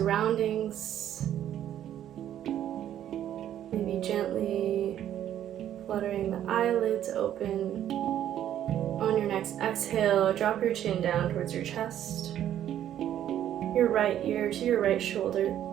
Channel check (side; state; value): left; quieter; 11.1 dB